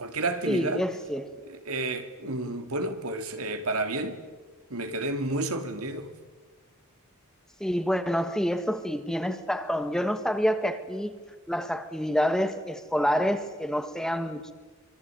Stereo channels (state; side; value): normal; both; correlation 0.65